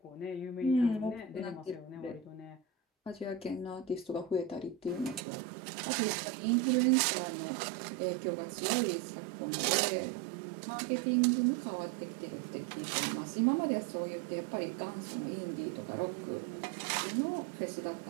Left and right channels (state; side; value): drops out; left; at 5.2 s